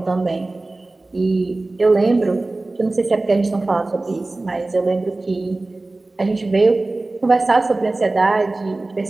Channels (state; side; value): quieter; left; 3.0 dB